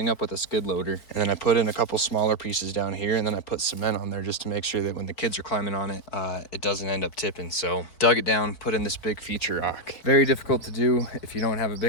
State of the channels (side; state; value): right; late; 4.6 ms